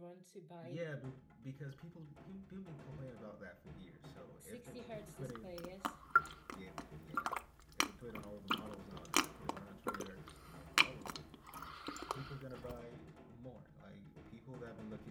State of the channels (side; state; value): both; identical; correlation 1.00